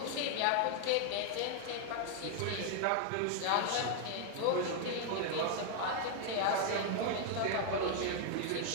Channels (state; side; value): different; both; correlation 0.00